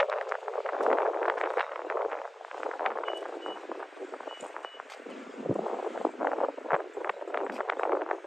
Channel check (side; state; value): both; normal; correlation 0.96